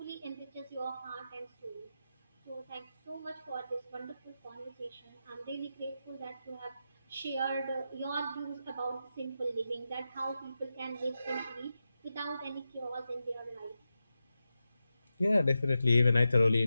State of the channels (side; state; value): both; inverted; correlation -0.90